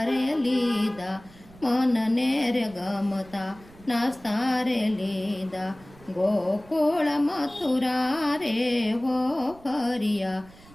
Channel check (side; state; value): right; noise; rumble, 23 dB below the sound